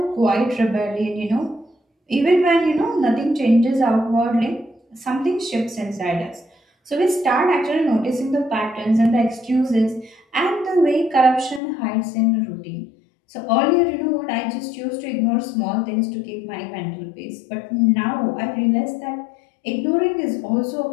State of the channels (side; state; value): right; drops out; at 11.6 s